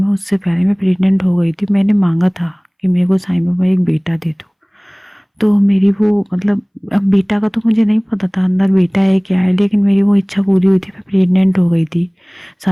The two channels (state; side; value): identical; both; correlation 1.00